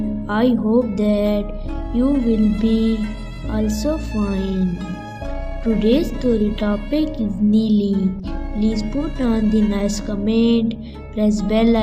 I hope that you will be also fine. Today's story topic is Neeli. Please put on the nice comment, press bell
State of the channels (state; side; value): identical; both; correlation 1.00